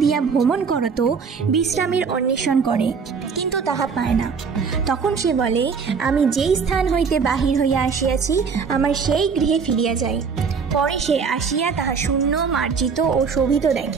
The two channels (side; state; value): left; quieter; 5.7 dB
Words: দিয়া ভ্রমণ করত বিশ্রামের অন্বেষণ করে, কিন্তু তাহা পায় না। তখন সে বলে, আমি যেই স্থান হইতে বাহির হইয়া আসিয়াছি আমার সেই গৃহে ফিরিয়া যাই। পরে সে আসিয়া তাহা শূন্য, মার্জিত ও শোভিত